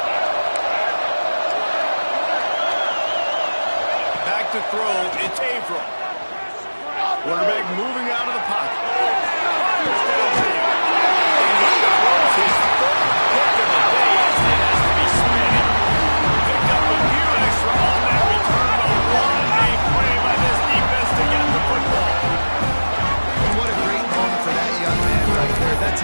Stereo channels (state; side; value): inverted; both; correlation -1.00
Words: Back to throw, it's Averill. Quarterback moving out of the pocket. Fires downfield. And he throws his third pick of the day as he has to be spinning. Picked up a few extra on that return, but what a play by this defense to get the football. And what a great moment for that young man right there. That's